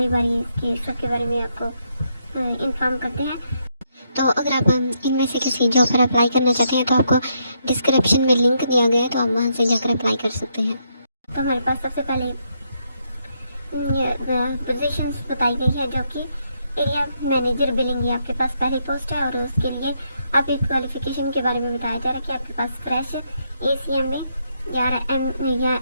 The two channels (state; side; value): inverted; both; correlation -0.77